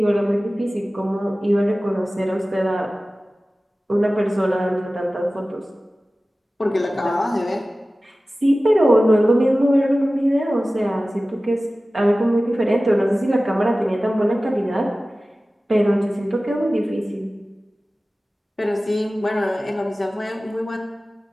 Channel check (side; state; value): both; normal; correlation 0.96